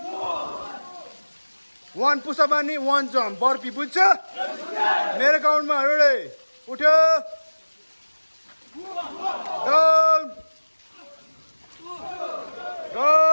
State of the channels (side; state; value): both; inverted; correlation -1.00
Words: One push up and one jump. Burpee, बुझ्छ? मेरो काउन्टमा ready. उठ्यो. Down.